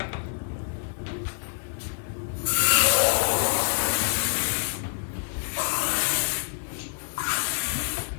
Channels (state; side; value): silent; right; 60 dB below the other